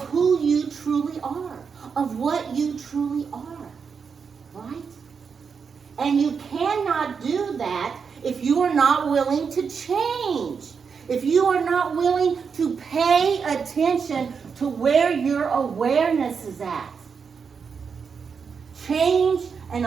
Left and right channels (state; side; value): quieter; left; 6.0 dB